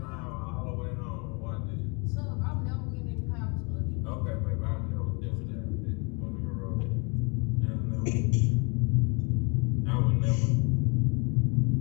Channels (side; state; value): right; quieter; 29.9 dB